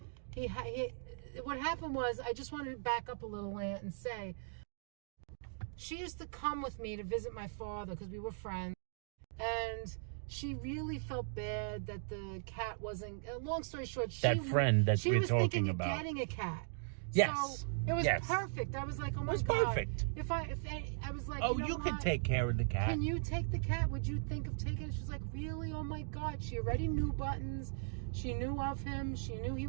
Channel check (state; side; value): silent; left; digital silence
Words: what happened was, I just wanted to back up a little and say, she used to come with me to visit my father because we were friends, and she really felt bad that the cat wasn't. Long story short, That friend that she we're was talking thinking about. of getting a cat. Yes. So it was Yes. perfect. I was like, oh my It was God. perfect. If I was like, Oh, you know you could what? take care of the cat. Can you take the cat? Would you think of taking it? She's like, really? Oh my God. She already knew Buttons. She knew of him. She knew he